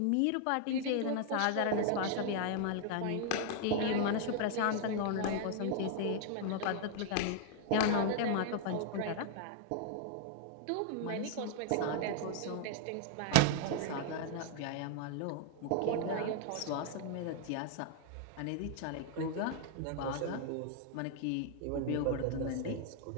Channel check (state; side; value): different; both; correlation 0.00